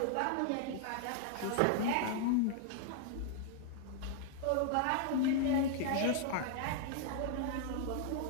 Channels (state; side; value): different; both; correlation 0.00